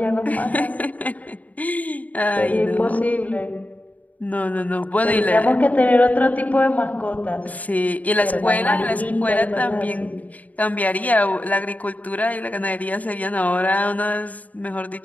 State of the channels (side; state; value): right; late; 0.074 ms